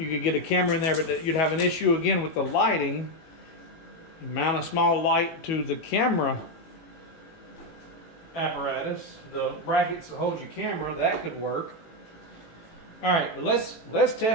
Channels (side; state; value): right; late; 18 ms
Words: could get a camera in there, but you'd have an issue again with the lighting. You mount a small light to the camera apparatus, the brackets that hold your camera, that could work. All right, but let's